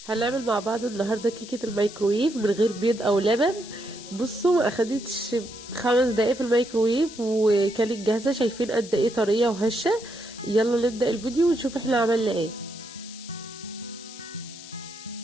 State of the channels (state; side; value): noise; left; hiss, 15 dB below the sound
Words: هنعمل مع بعض النهارده كيكه الميكرويف من غير بيض او لبن. بصوا ما اخدتش 5 دقايق في الميكرويف وكانت جاهزه. شايفين قد ايه طريه وهشه؟ يلا نبدا الفيديو ونشوف احنا عملنا ايه.